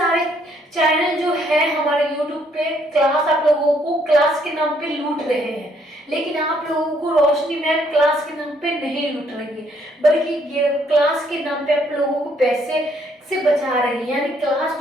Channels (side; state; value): both; normal; correlation 0.68